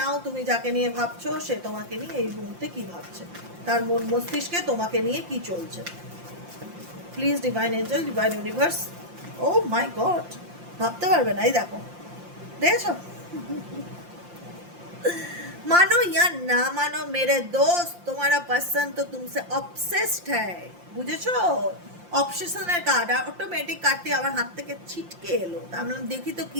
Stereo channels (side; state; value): left; late; 5.7 ms